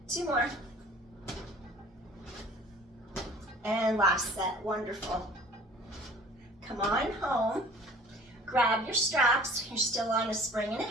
2 more. And last set. Wonderful. Come on home. Grab your straps. You're still on a spring and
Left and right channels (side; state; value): both; normal; correlation 0.49